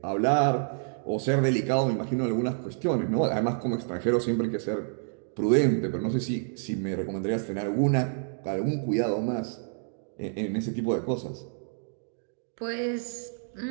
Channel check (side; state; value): left; silent; digital silence